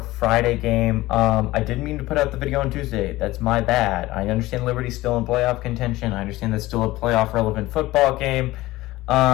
Friday game. I didn't mean to put out the video on Tuesday. That's my bad. I understand Liberty's still in playoff contention. I understand that's still a playoff relevant football game.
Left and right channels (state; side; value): quieter; right; 18.1 dB